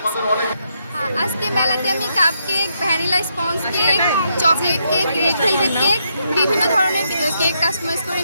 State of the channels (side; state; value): both; inverted; correlation -0.78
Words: আজকে মেলাতে আমি cup cake, vanilla sponge cake, chocolate cake, red velvet cake, বিভিন্ন ধরনের কেক কাস্টমাইজ করে